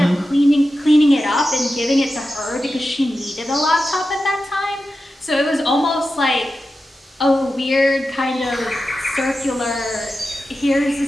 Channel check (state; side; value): normal; both; correlation 0.92